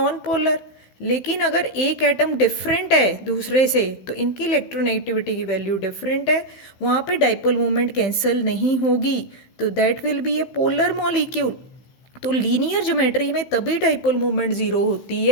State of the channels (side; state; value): right; late; 16 ms